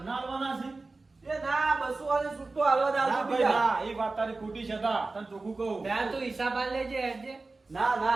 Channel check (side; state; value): left; quieter; 3.5 dB